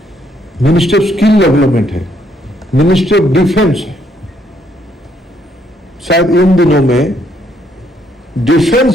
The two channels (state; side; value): normal; both; correlation 0.71